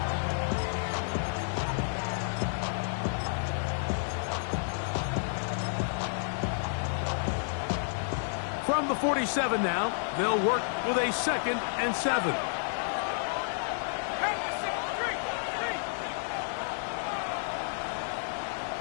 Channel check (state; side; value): silent; right; digital silence